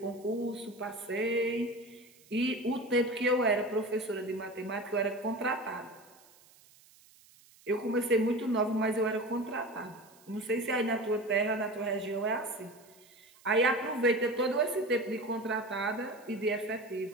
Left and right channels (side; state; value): right; noise; hiss, 27 dB below the sound